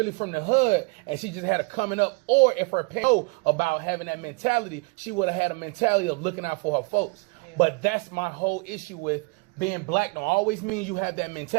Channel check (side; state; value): left; quieter; 30.4 dB